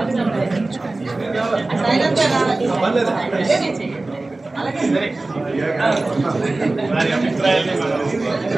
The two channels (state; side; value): quieter; left; 3.1 dB